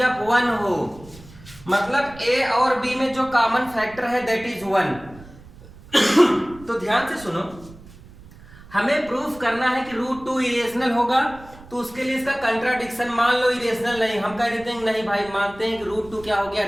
1 हो, मतलब a और b में जो कॉमन फैक्टर है दैट इज 1। तो ध्यान से सुनो, हमें प्रूफ करना है कि रूट 2 इरेशनल होगा। तो उसके लिए इसका कंट्राडिक्शन, मान लो इरेशनल नहीं, हम कह देते हैं नहीं भाई, मानते हैं कि रूट 2 क्या हो गया,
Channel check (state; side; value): noise; right; rumble, 20 dB below the sound